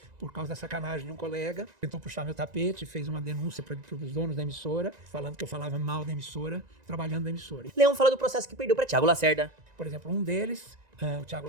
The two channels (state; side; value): late; left; 1.9 ms